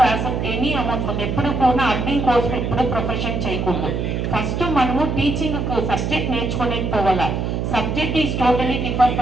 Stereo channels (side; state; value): right; noise; hum, 1 dB below the sound